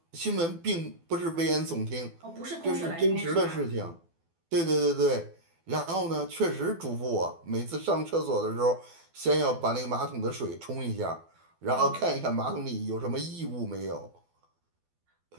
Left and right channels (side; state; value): left; late; 12 ms